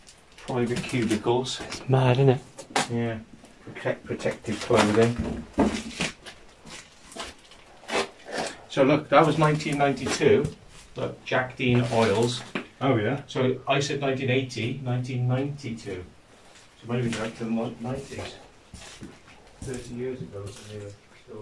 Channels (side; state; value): both; identical; correlation 1.00